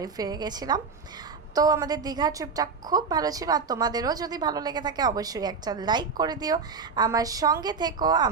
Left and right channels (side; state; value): left; quieter; 5.1 dB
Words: ফিরে গেছিলাম। তো আমাদের দীঘা ট্রিপটা খুব ভালো ছিল। আর তোমাদেরও যদি ভালো লেগে থাকে অবশ্যই একটা লাইক করে দিও, আমার সঙ্গে থেকো,